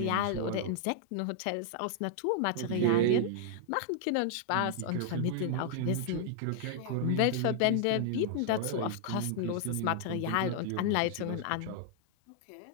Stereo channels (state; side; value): different; both; correlation -0.01